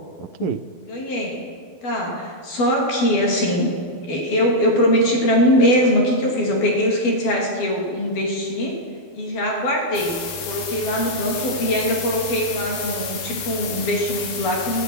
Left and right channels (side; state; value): right; late; 12 ms